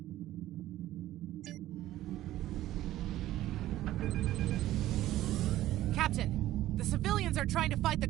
Captain, the civilians are trying to fight the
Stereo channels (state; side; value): quieter; left; 14.5 dB